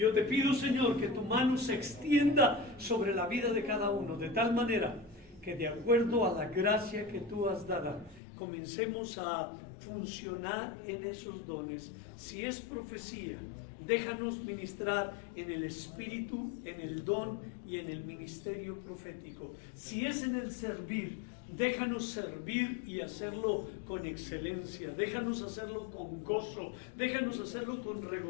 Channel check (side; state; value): right; drops out; at 8.2 s